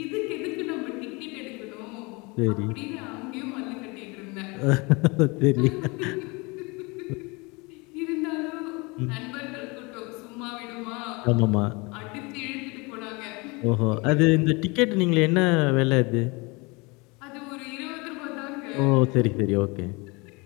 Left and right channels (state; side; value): quieter; right; 27.2 dB